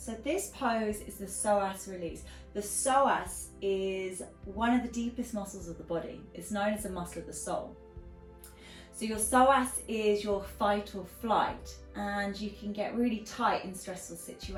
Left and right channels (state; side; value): identical; both; correlation 1.00